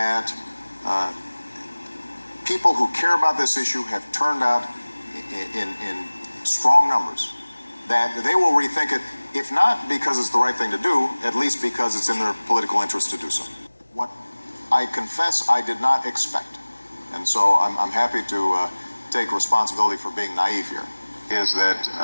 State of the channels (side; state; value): both; inverted; correlation -1.00